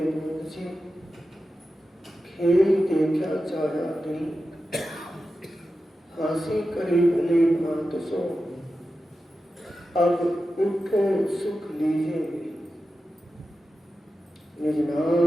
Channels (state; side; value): normal; both; correlation 0.92